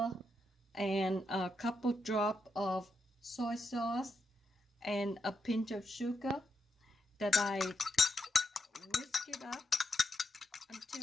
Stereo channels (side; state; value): both; normal; correlation 0.83